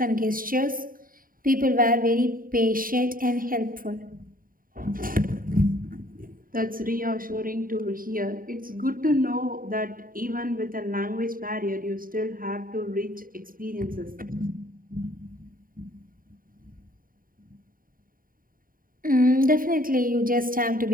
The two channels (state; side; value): late; left; 0.41 ms